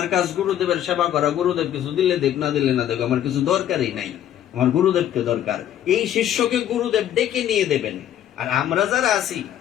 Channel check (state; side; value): quieter; right; 11.1 dB